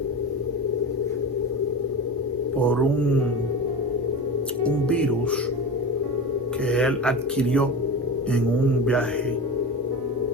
por un virus que él adquirió en un viaje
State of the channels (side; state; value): both; normal; correlation 0.28